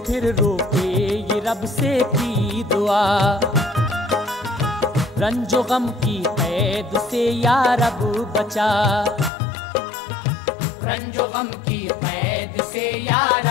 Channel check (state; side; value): drops out; right; at 9.3 s